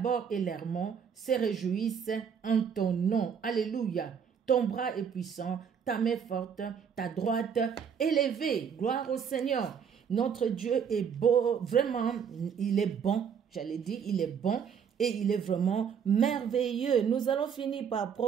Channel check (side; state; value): left; quieter; 7.2 dB